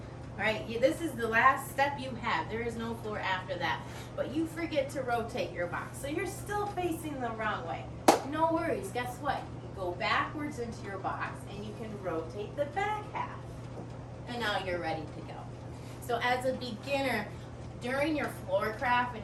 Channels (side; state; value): both; identical; correlation 1.00